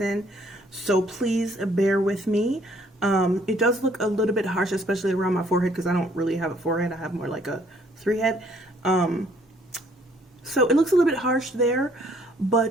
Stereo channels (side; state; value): both; normal; correlation 0.63